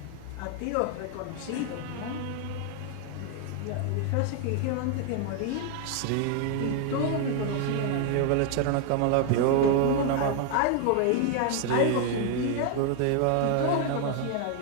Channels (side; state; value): both; different; correlation 0.01